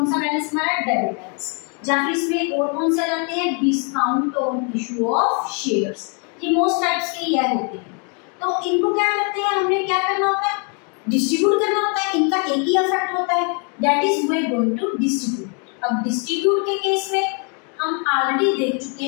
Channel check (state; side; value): quieter; right; 37.5 dB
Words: सा बैलेंस हमारा डेबिट बैलेंस। जहाँ फिर इसमें और कौन से जाते हैं, discount on issue of shares. ये मोस्ट टाइप्स के ये होते हैं। तो इनको क्या करते हैं, हमने क्या करना होता है, डिस्ट्रीब्यूट करना होता है। इनका एक ही इफेक्ट होता है, that is we are going to distribute. अब डिस्ट्रीब्यूट के केस में हम ऑलरेडी देख चुके